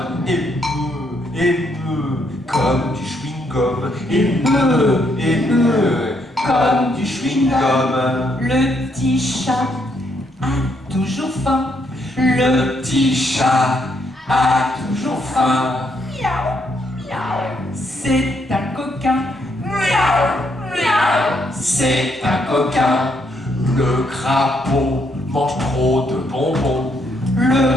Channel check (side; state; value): both; normal; correlation 0.74